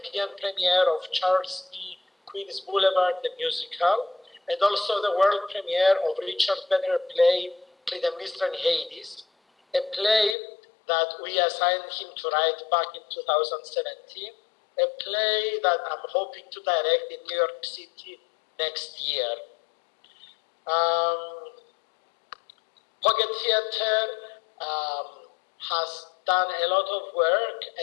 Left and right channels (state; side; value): drops out; right; at 10.4 s